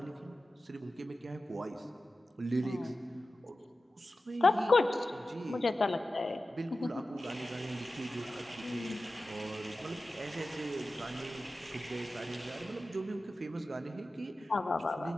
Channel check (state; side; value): normal; both; correlation 0.95